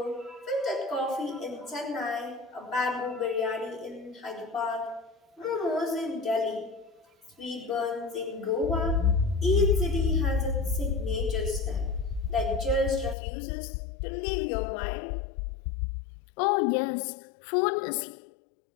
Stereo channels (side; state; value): right; drops out; at 13.2 s